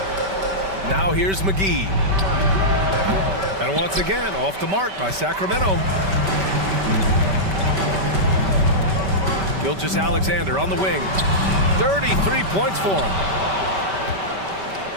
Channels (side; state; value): left; late; 5.2 ms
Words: Now here's McGee. And once again, off the mark by Sacramento. Gilgeous-Alexander on the wing. 33 points for him.